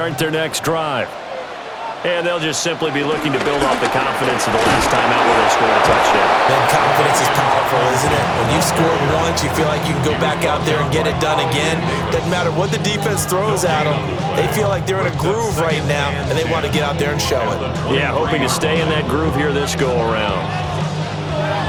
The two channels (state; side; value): identical; both; correlation 1.00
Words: their next drive. And they'll just simply be looking to build off the confidence of the last time out where they scored a touchdown. That confidence is powerful, isn't it? When you score once, you feel like you can go back out there and get it done again. Doesn't matter what the defense throws at them. They feel like they're in a groove right now, and they want to get out there and show it. Yeah, hoping to stay in that groove here this go-around.